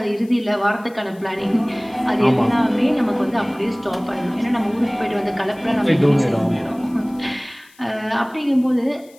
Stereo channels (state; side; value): noise; left; hiss, 28 dB below the sound